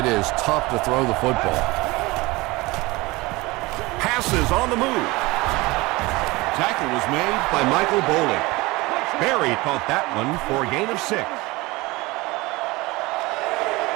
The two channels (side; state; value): left; quieter; 22.2 dB